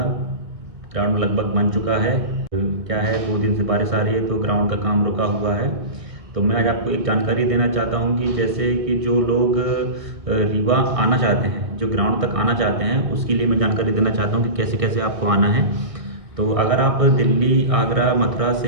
ग्राउंड लगभग बन चुका है। क्या है, 2 दिन से बारिश आ रही है तो ग्राउंड का काम रुका हुआ है। तो मैं आज आपको एक जानकारी देना चाहता हूं कि जैसे कि जो लोग रीवा आना चाहते हैं, जो ग्राउंड तक आना चाहते हैं, उसके लिए मैं जानकारी देना चाहता हूँ कि कैसे कैसे आपको आना है। तो अगर आप दिल्ली, आगरा, मथुरा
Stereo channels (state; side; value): late; left; 1.6 ms